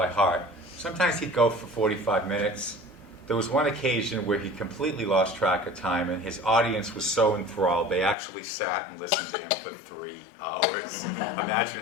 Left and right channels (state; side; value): drops out; right; at 8.2 s